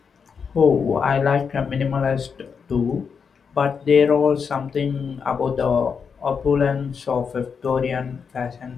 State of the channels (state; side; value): quieter; right; 6.1 dB